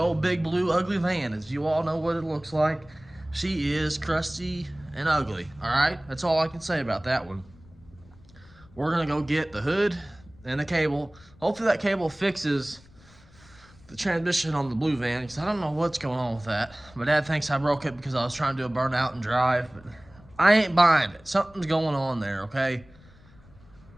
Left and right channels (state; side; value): noise; left; rumble, 25 dB below the sound